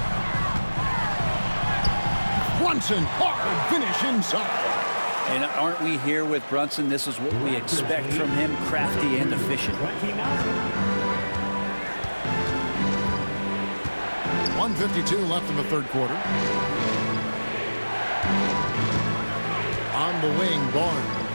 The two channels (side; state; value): both; inverted; correlation -1.00